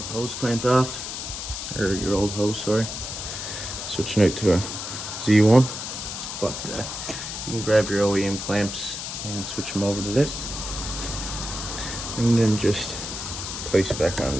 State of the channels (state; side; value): noise; left; hiss, 6 dB below the sound